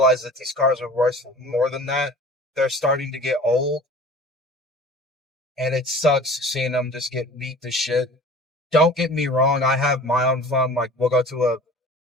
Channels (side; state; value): both; normal; correlation 0.43